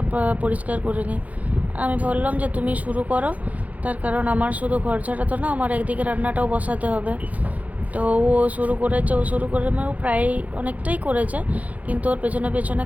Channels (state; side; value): late; left; 0.072 ms